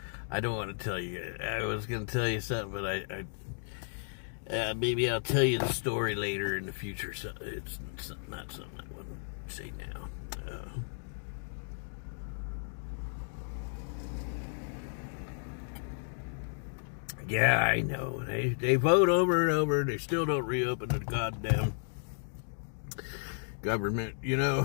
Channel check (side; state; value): right; silent; digital silence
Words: I don't want to tell you. I was going to tell you something, but maybe I'll tell you the story later in the future. So it's not something I want to say now. Yeah, I know. They vote over and over, and they still don't reopen the goddamn government,